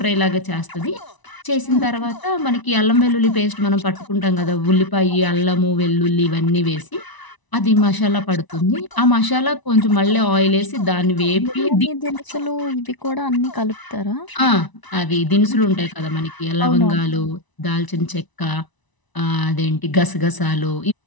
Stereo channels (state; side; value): late; right; 1.0 ms